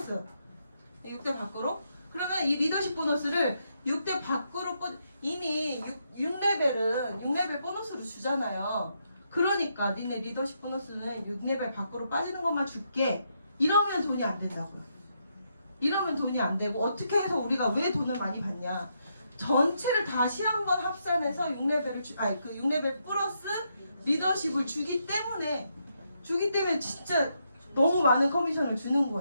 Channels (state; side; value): inverted; both; correlation -0.79